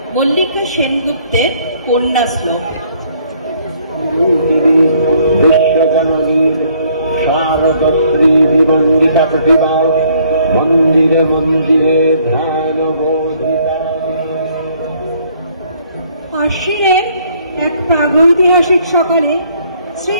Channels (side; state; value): both; inverted; correlation -0.63